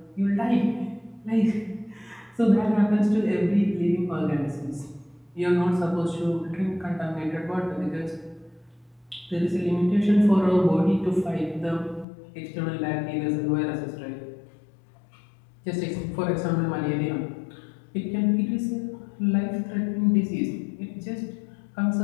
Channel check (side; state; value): right; drops out; at 12.1 s